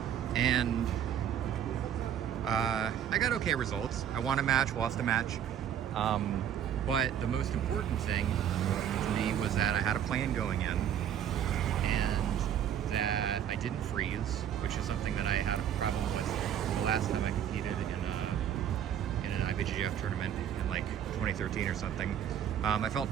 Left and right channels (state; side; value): quieter; left; 9.6 dB